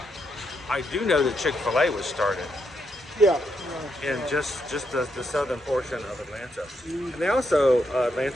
I do know that Chick-fil-A was started. Yeah. In just the southern portion of Atlanta. And they also,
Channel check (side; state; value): both; normal; correlation 0.79